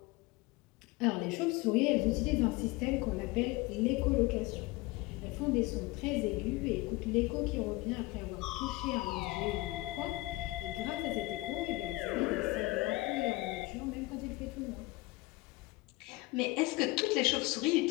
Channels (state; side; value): quieter; right; 21.6 dB